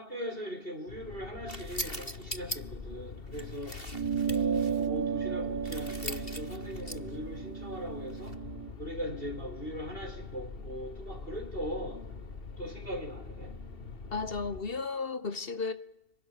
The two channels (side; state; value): right; late; 2.7 ms